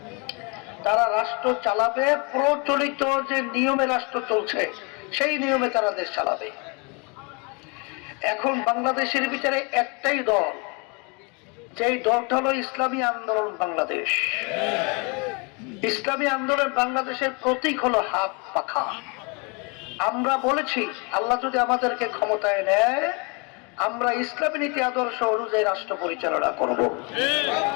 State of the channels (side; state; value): right; quieter; 31.3 dB